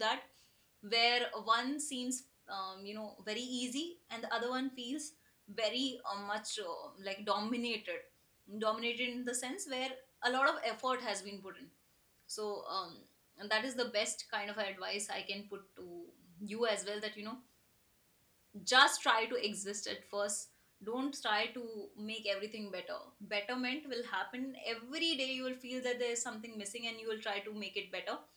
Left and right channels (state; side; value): identical; both; correlation 1.00